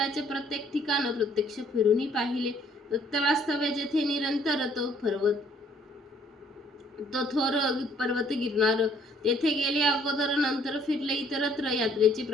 प्रत्येक ठिकाण प्रत्यक्ष फिरूनही पाहिले. दत्त वास्तव्य जेथे निरंतर तो थोर पर्वत गिरणार तेथे गेले अगोदर. नंतर फिरले इतरत्र. यात्रेचे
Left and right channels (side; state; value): both; normal; correlation 0.62